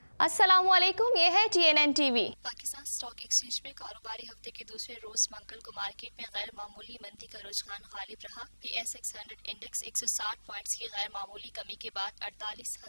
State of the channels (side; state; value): both; inverted; correlation -1.00